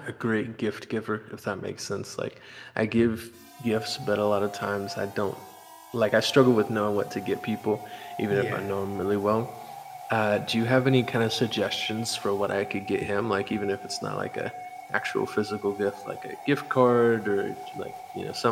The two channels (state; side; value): identical; both; correlation 1.00